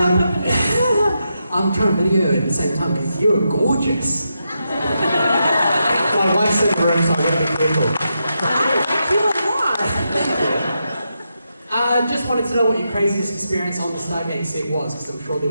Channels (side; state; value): both; inverted; correlation -0.85